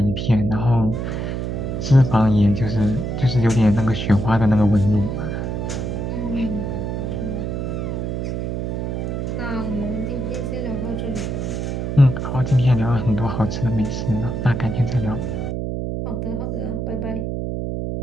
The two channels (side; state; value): right; noise; hum, 2 dB below the sound